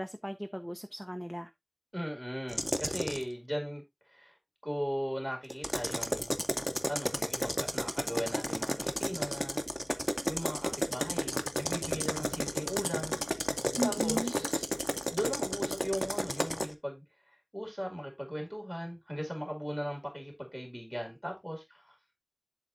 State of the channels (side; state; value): both; identical; correlation 1.00